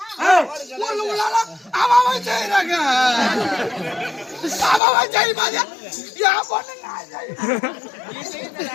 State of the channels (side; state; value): right; drops out; at 4.8 s